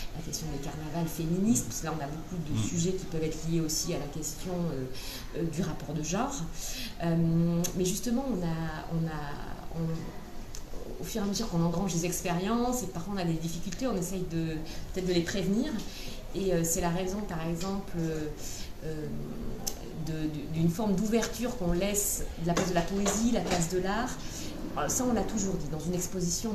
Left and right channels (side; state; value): both; identical; correlation 1.00